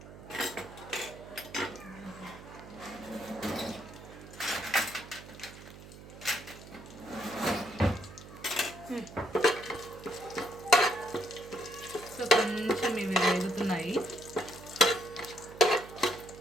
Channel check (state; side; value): noise; right; hum, 16 dB below the sound